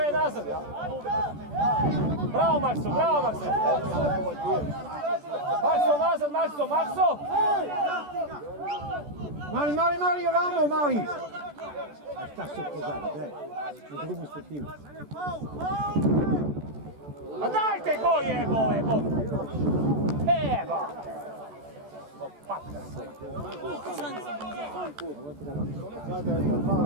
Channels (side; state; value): left; late; 14 ms